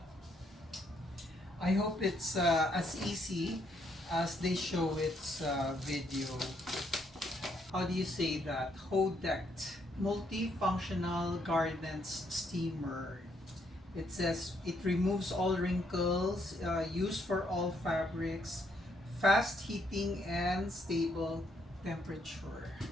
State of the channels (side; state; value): both; normal; correlation 0.72